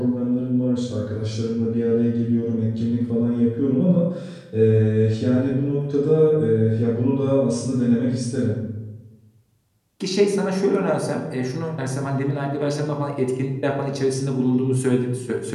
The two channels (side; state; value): both; identical; correlation 1.00